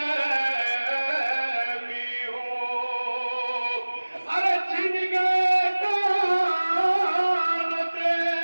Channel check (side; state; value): both; inverted; correlation -1.00